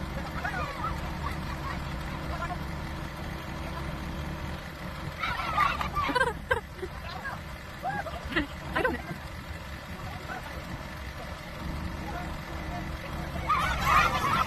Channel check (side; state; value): both; identical; correlation 1.00